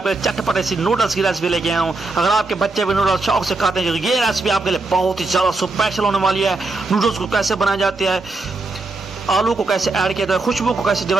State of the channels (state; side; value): quieter; left; 3.3 dB